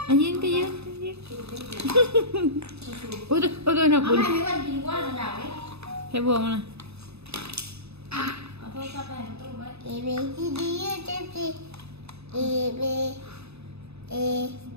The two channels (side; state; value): left; late; 0.79 ms